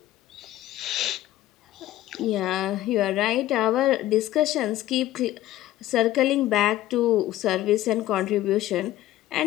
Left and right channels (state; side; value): quieter; right; 14.3 dB